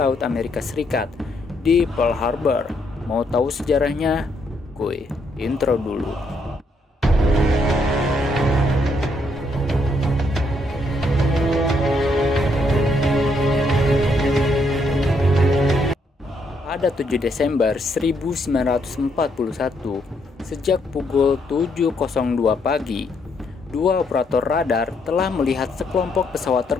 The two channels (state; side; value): normal; both; correlation 0.74